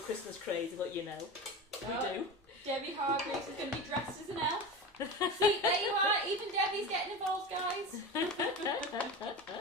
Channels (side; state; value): both; normal; correlation 0.27